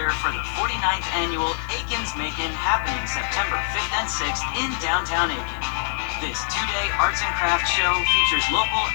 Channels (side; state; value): right; silent; digital silence